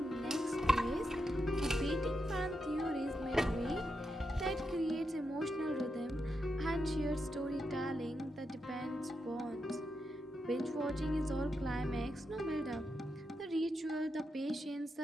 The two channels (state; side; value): normal; both; correlation 0.85